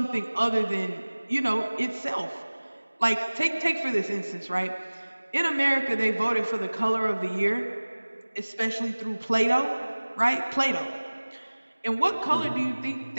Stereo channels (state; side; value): inverted; both; correlation -1.00